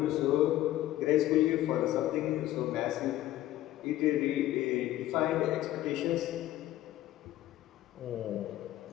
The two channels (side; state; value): right; quieter; 14.5 dB